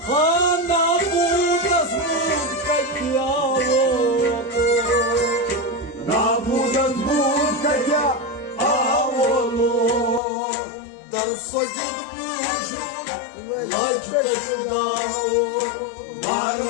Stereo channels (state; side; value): drops out; right; at 10.2 s